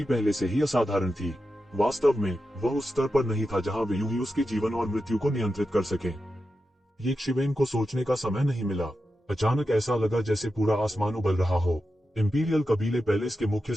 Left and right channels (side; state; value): both; normal; correlation 0.90